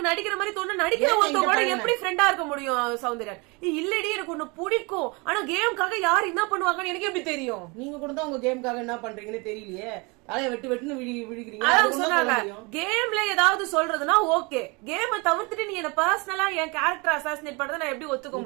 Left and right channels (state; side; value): quieter; left; 28.4 dB